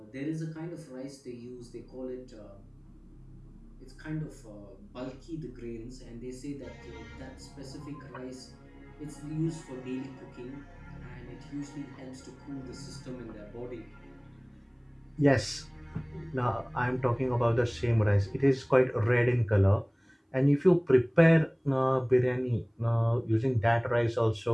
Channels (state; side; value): identical; both; correlation 1.00